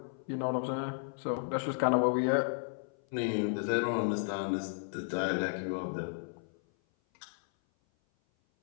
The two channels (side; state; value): right; silent; 55 dB below the other